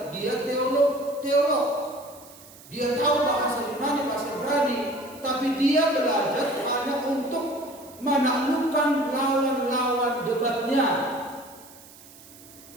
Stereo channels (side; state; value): right; noise; hiss, 21 dB below the sound